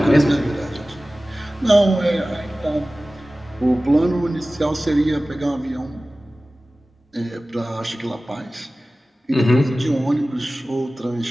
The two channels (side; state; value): both; normal; correlation 0.97